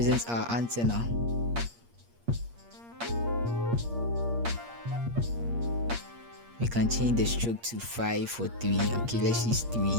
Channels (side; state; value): left; late; 8.5 ms